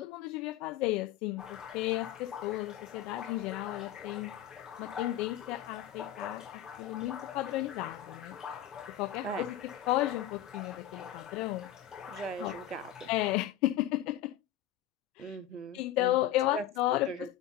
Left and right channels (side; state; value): right; quieter; 12.0 dB